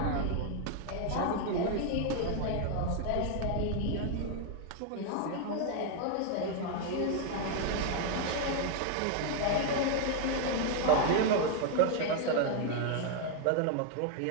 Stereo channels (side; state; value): both; different; correlation 0.00